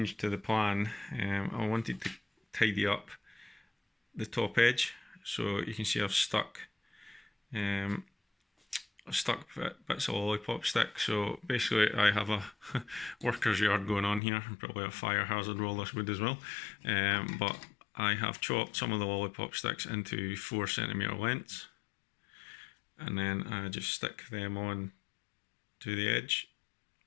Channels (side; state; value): right; drops out; at 14.2 s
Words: to the plan. I wanted to tidy up the top edge, so you can see I've stuck bits of lollipop stick. So basically I have a worker's yard going on here, and probably a fire hazard with all this wood as well, but I have chopped some of the lollipop sticks into 4cm lengths, and then I just stick them on to the edge